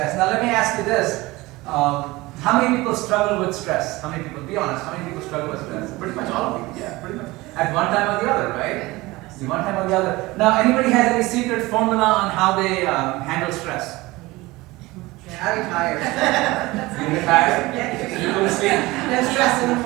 Now let me ask you this. How many people struggle with stress? How many people, be honest, how many people struggle with stress? Pretty much all of you, yeah, pretty much. At one time or the other, right? One time or the other. Now, anybody has any secret formula on how they handle stress? I retired. You retired? You go to sleep? No stress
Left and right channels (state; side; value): quieter; left; 20.7 dB